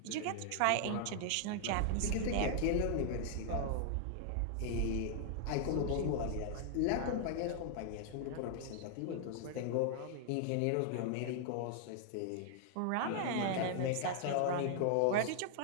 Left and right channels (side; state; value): both; different; correlation -0.01